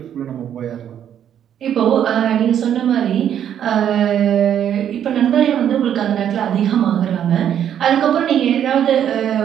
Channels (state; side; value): quieter; left; 9.6 dB